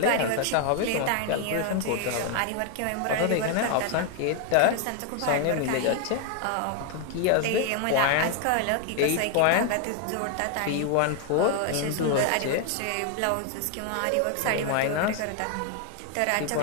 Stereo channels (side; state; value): both; different; correlation 0.00